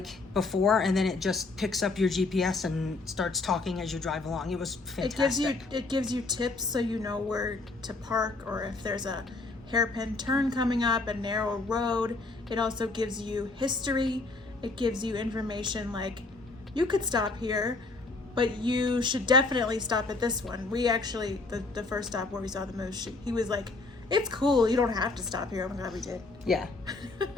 before, and then it just picks up your GPS and starts talking as you drive along. It was fantastic. It gives you tips so you know where to park, or if there's a hairpin turn coming up, a narrow road. It also gives you history. It gives you information like, you could stop here, but you should definitely stop at this one. We actually, the first stop where we saw the moose, he was like, it's cool, you don't have to stop here. I'm glad we did. Yeah.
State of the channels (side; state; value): right; quieter; 3.5 dB